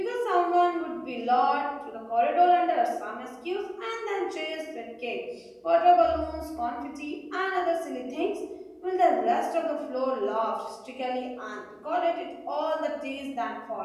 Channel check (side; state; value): both; identical; correlation 1.00